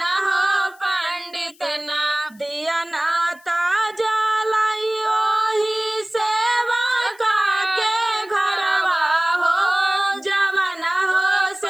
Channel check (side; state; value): left; noise; hiss, 28 dB below the sound